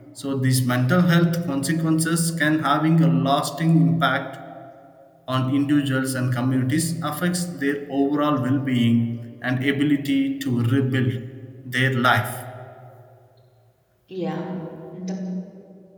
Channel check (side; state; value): both; identical; correlation 1.00